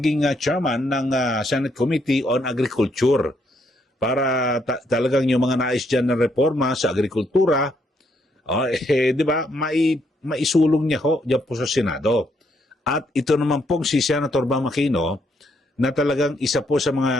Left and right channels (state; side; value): normal; both; correlation 0.74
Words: chairman ng Senate Committee on Agriculture para talagang yung mga nais dyan na reforma sa agrikultura, di ba, maisulong niya ho dyan po sa Senado. At ito naman pong si Senator Bam Aquino na talagang isa po sa mga